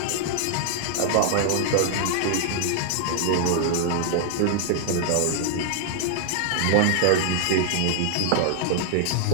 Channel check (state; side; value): different; both; correlation 0.00